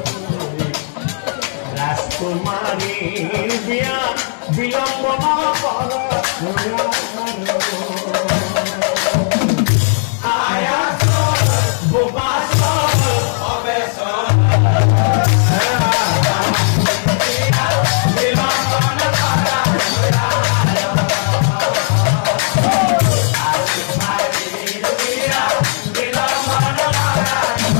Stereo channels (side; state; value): right; silent; digital silence